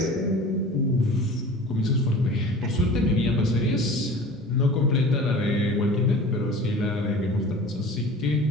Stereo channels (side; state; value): both; normal; correlation 0.40